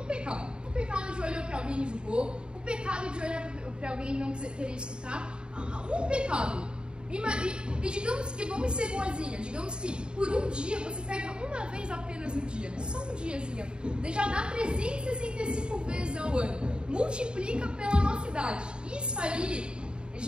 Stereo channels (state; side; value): late; left; 0.051 ms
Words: pecado. O pecado de olhar para alguém e julgou. O pecado de olhar para alguém e não querer escutar. Um pecado. E digamos que, vamos ser boazinha, digamos que por um dia você pega uma vez apenas no dia, só um diazinho, já dá 365 vezes ao ano, multiplica pela nossa idade. Isso aí